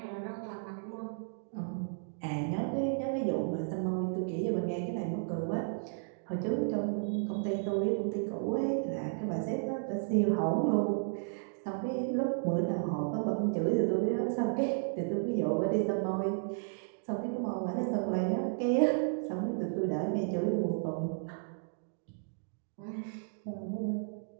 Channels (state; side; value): silent; left; digital silence